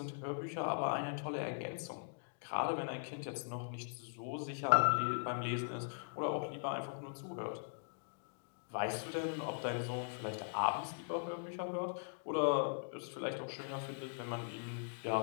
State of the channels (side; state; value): right; silent; digital silence